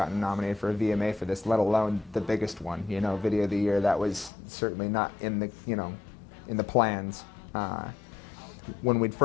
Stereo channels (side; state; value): right; drops out; at 4.3 s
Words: nominated for a VMA for this, let alone the biggest one, you know, Video of the Year. That was certainly not in the, you know, in the plans. When we'd